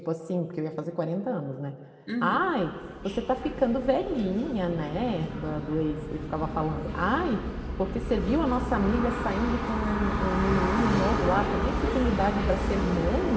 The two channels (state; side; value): identical; both; correlation 1.00